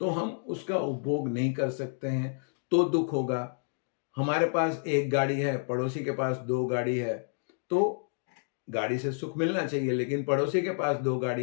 तो हम उसका उपभोग नहीं कर सकते हैं तो दुख होगा। हमारे पास एक गाड़ी है, पड़ोसी के पास 2 गाड़ी है, तो गाड़ी से सुख मिलना चाहिए, लेकिन पड़ोसी के पास 2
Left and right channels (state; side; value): silent; right; digital silence